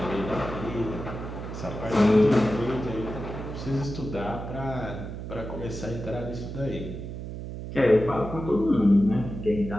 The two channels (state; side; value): noise; right; hum, 8 dB below the sound